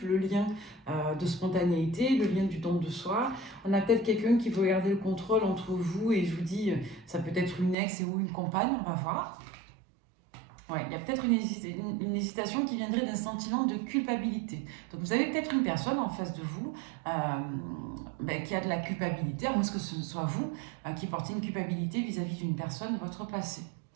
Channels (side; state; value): left; drops out; at 7.8 s